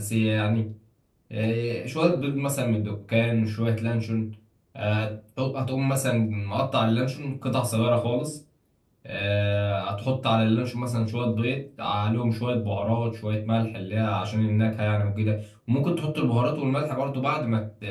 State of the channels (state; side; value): identical; both; correlation 1.00